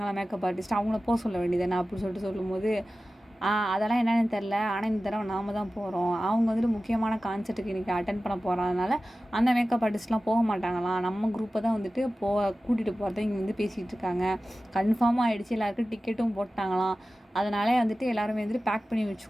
மேக்கப் ஆர்டிஸ்ட், அவங்கள போக சொல்ல வேண்டியதானே அப்படின்னு சொல்லிட்டு சொல்லும்போது, அதெல்லாம் என்னென்னு தெரில, ஆனால் இந்த தடவை நாம் தான் போகிறோம், அவங்க வந்துட்டு முக்கியமான கான்செர்ட்டுக்கு இன்றைக்கி அட்டன் பண்ண போகிறதுனால அந்த மேக்கப் ஆர்டிஸ்ட்லாம் போக மாட்டாங்களாம், நம்ம குரூப்பை தான் வந்துட்டு கூட்டிகிட்டு போகிறத இங்கே வந்து பேசிகிட்டு இருக்காங்க. கன்ஃபார்மாக ஆகிடுச்சு, எல்லாருக்கும் டிக்கெட்டும் போட்டாங்களாம். அதனாலே வந்துட்டு எல்லாருமே வந்துட்டு பேக் பண்ணி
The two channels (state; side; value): normal; both; correlation 0.95